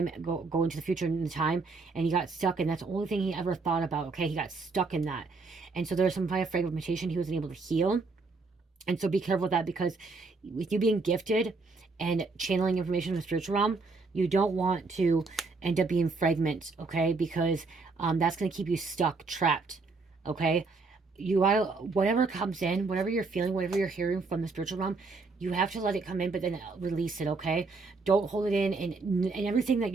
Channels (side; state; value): left; quieter; 4.0 dB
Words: go into the future in time, and he got stuck, and that's the only thing he ever thought about. Okay, he got stuck in that, and so there's some kind of fragmentation he wasn't able to heal. And so be careful with that, because with you being gifted and channeling information from the spiritual realm, you don't want to end up being fragment, okay? Because that's going to keep you stuck, trapped, okay? You gotta, whatever comes in, whatever you're feeling, whatever you're hearing from the spiritual realm, you have to let it come in, but then release it, okay? Don't hold it in, and everything that